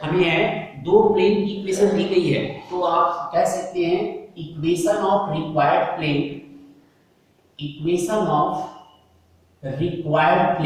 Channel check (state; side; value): identical; both; correlation 1.00